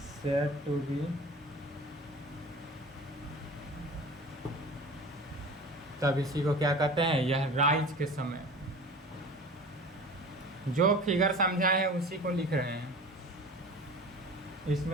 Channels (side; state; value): both; normal; correlation 0.38